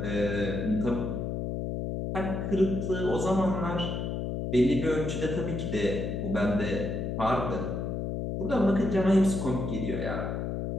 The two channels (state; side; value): noise; left; hum, 2 dB below the sound